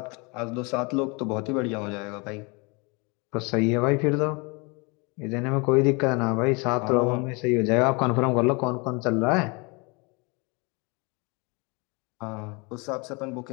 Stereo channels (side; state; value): right; quieter; 29.5 dB